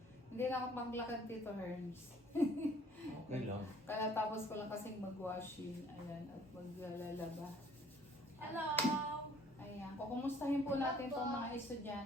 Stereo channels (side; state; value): both; normal; correlation 0.57